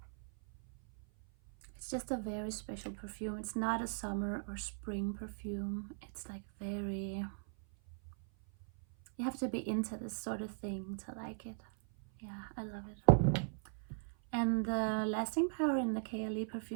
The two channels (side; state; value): left; silent; 52 dB below the other